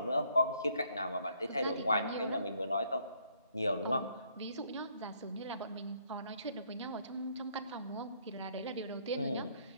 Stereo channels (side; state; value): both; inverted; correlation -0.67